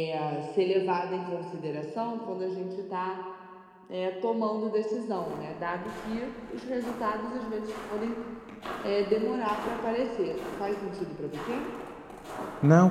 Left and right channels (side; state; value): both; identical; correlation 1.00